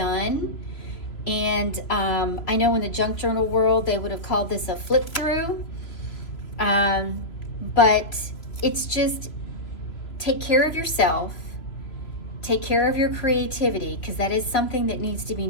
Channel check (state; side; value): late; right; 3.0 ms